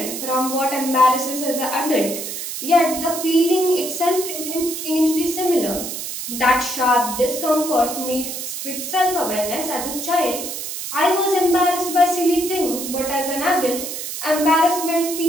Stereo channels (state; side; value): noise; right; hiss, 6 dB below the sound